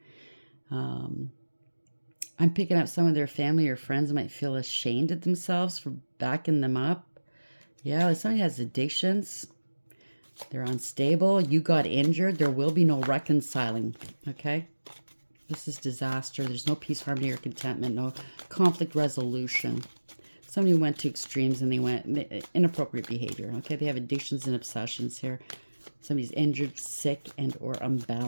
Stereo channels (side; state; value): both; inverted; correlation -1.00